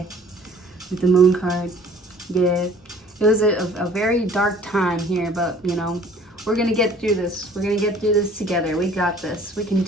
With the Moon card. Yeah. It was a very dark time here, but you know, we're gonna get through this. We're gonna get through this together. We got this. We can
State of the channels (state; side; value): normal; both; correlation 0.52